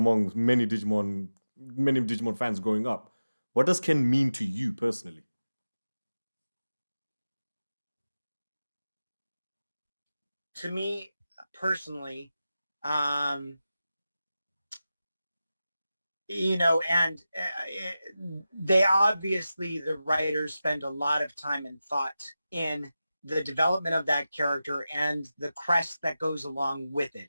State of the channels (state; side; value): inverted; both; correlation -0.94